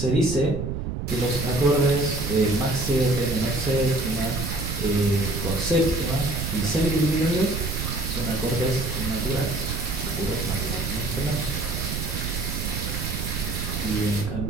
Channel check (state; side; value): noise; right; rumble, 4 dB below the sound